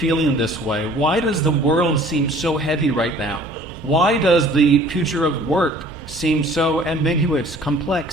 this way. Why does the world seem so heavy right now? Why does the future of work seem so ambiguous,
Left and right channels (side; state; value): both; normal; correlation 0.51